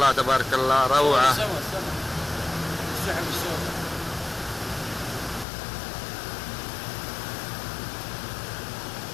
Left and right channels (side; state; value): right; drops out; at 5.5 s